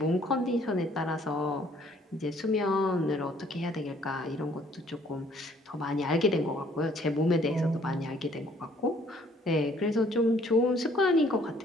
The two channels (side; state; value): both; normal; correlation 0.61